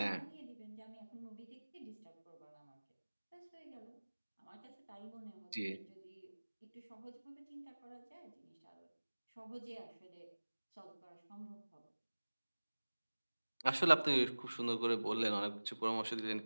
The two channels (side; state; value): both; inverted; correlation -1.00